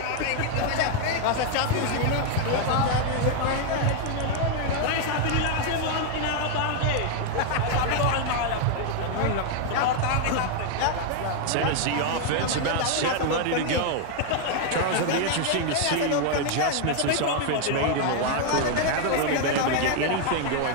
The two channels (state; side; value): different; both; correlation 0.00